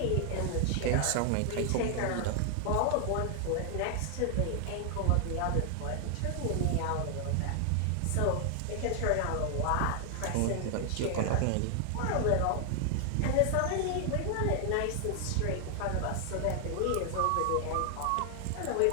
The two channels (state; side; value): different; both; correlation 0.00